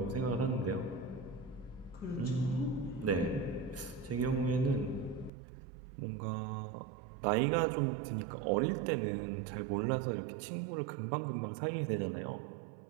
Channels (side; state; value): left; drops out; at 5.3 s